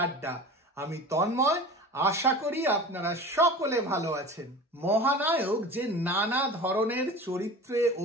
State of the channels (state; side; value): normal; both; correlation 0.36